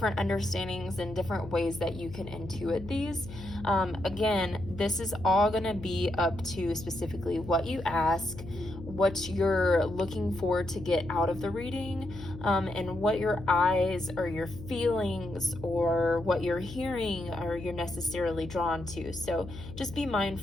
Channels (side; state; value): left; noise; hum, 13 dB below the sound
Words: understandings and different ways that you can intuit these. Again, this is all going to be up to specifically what you ask, what you're looking for to get out of the reading, and what your eyes or your feelings or what you're hearing or you're necessarily drawn to. So just be